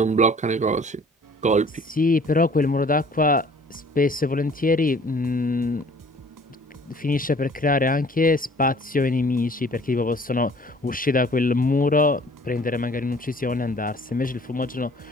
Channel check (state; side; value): normal; both; correlation 0.53